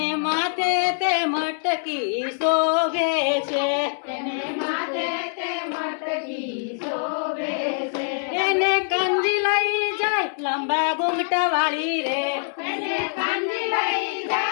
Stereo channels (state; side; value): silent; right; 63 dB below the other